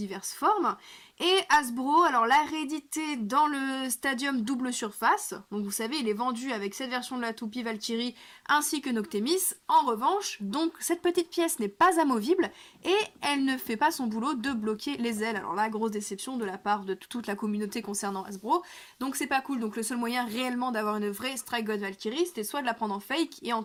formes. Et Hasbro, alors l'a réédité dans le Stadium double surface. Donc vous savez, il est vendu avec cette version de la toupie Valkyrie ainsi que Noctemis. En revanche, donc cette petite pièce n'est pas amovible et elle ne fait pas son boulot de bloquer les ailes. Alors là, grosse déception de la part de toute la communauté concernant Hasbro. Donc c'est pas cool. Donc le seul moyen réellement d'avoir une vraie Strike God Valkyrie, c'était soit de la prendre en fake, et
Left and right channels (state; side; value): identical; both; correlation 1.00